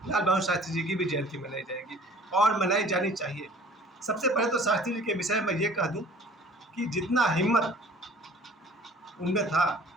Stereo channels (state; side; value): normal; both; correlation 0.50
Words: लाल बहादुर शास्त्री जी की भी जयंती मनाई जाएगी और मनाई जानी चाहिए। सबसे पहले तो शास्त्री जी के विषय में ये कह दूँ कि जितना हिम्मत उनमें था,